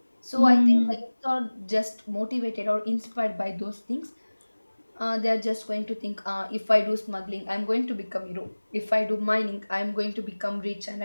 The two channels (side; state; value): both; inverted; correlation -1.00